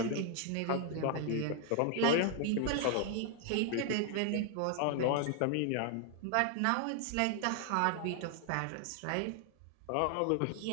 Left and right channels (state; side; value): different; both; correlation 0.00